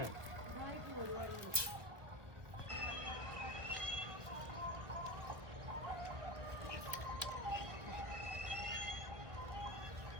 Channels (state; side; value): late; left; 1.0 ms